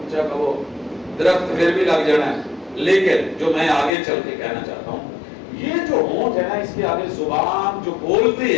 کہو درخت پھر بھی لگ جانا ہے۔ لیکن جو میں آگے چل کے کہنا چاہتا ہوں، یہ جو ہونٹ ہے نا، اس کے آگے زبان جو بولتی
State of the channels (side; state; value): right; drops out; at 3.9 s